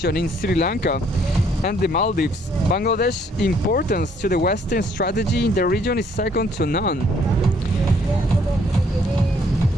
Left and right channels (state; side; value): normal; both; correlation 0.65